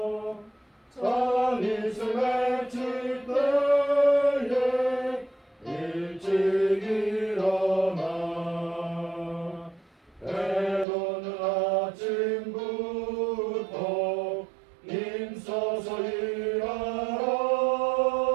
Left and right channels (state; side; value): drops out; left; at 10.9 s